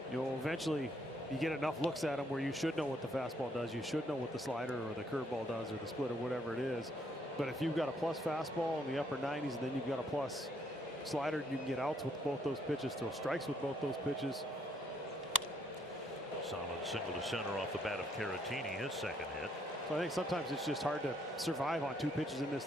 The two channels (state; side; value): normal; both; correlation 0.70